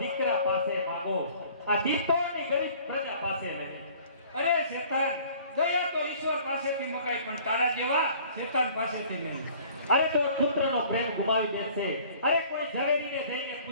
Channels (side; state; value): both; inverted; correlation -0.52